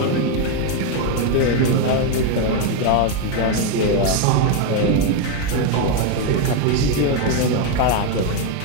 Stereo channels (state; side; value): different; both; correlation 0.02